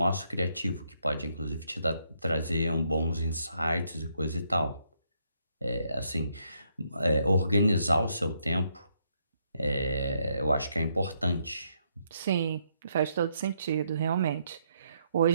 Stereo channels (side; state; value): both; inverted; correlation -0.75